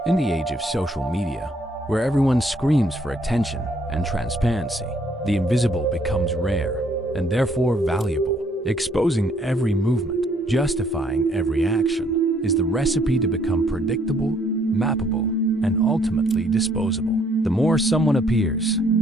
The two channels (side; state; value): both; normal; correlation 0.66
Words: In the age of social media, where everyone screams for attention and transparency, the invisible becomes rare and therefore valuable. Exposing every movement, justifying every action, is the recipe to become predictable, mappable, and ultimately disposable. The more someone appears,